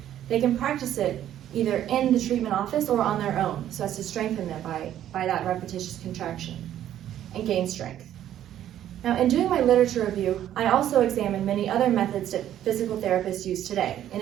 they can practice it either in the treatment office or on their own so as to strengthen them by that repetitious contraction and gain strength. Now, in doing my literature review, I also examined many other methods that physical therapists use today, in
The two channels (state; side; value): quieter; left; 11.5 dB